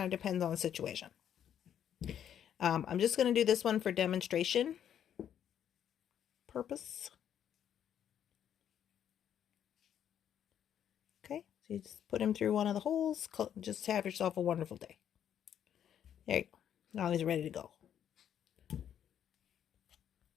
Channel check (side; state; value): right; quieter; 9.5 dB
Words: of depends on the situation. I'm just going to do this one for demonstration purpose. Okay, so you just put him through one of the holes. Just have yourself a wonderful day. There you go. Now he's ready to go.